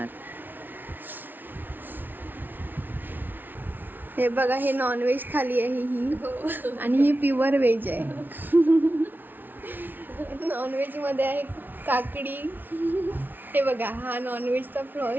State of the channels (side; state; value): left; late; 0.089 ms